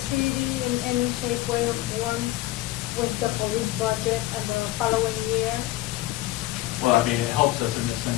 in any shape, way, or form with the police budget and the following year? Well, I mean, it helps us in the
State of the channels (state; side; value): quieter; right; 16.4 dB